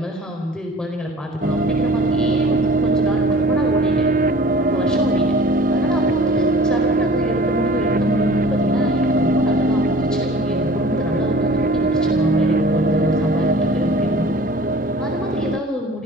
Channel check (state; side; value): normal; both; correlation 0.45